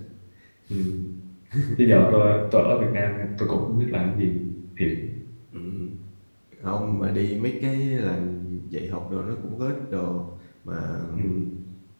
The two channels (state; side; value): inverted; both; correlation -1.00